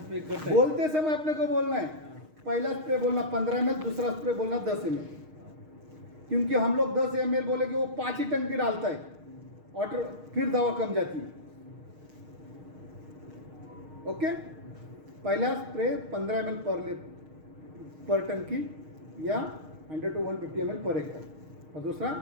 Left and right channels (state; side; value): late; left; 6.5 ms